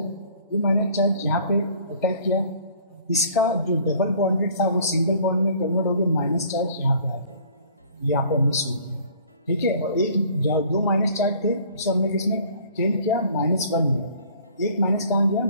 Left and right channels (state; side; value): inverted; both; correlation -0.54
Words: ये माइनस चार्ज यहाँ पे अटैक किया, इसका जो डबल बॉन्डेड था वो सिंगल बॉन्ड में कन्वर्ट हो गया, माइनस चार्ज यहाँ पे आ गया, यहाँ पे मिस हो गया, ठीक है। और एक दो माइनस चार्ज थे उसे हमने किसमें चेंज किया, -1 में, एक माइनस कहाँ गया,